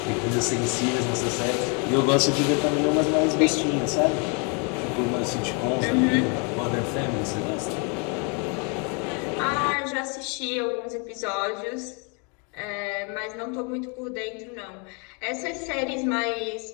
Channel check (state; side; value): quieter; right; 35.2 dB